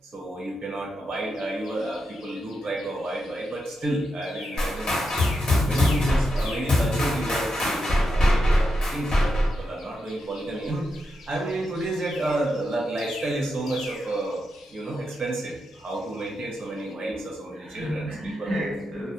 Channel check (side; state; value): both; normal; correlation 0.85